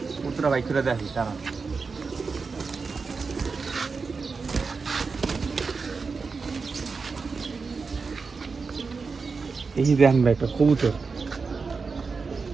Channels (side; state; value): left; quieter; 4.7 dB